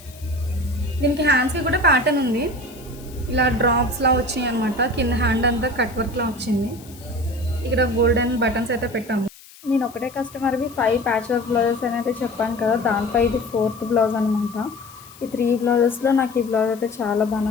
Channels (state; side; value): noise; left; hiss, 22 dB below the sound